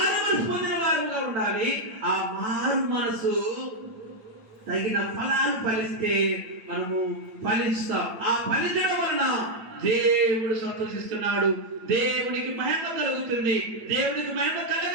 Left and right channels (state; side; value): late; left; 8.9 ms